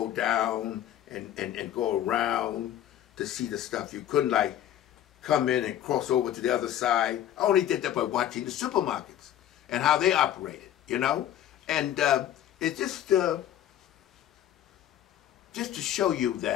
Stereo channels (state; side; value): quieter; right; 11.4 dB